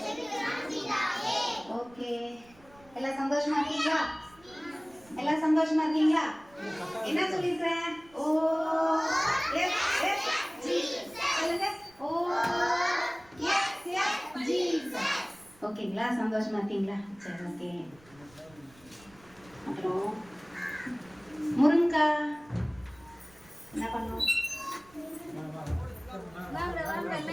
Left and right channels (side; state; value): right; noise; rumble, 27 dB below the sound